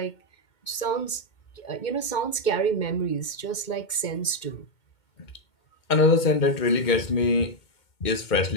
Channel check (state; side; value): late; right; 2.2 ms